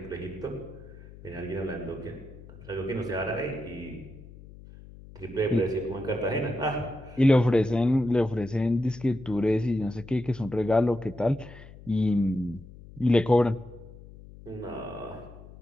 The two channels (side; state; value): left; noise; hum, 18 dB below the sound